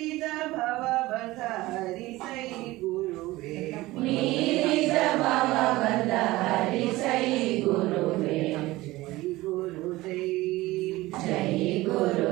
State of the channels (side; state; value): left; quieter; 18.9 dB